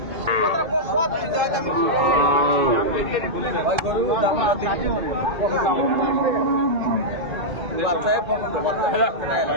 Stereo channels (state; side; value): late; left; 2.5 ms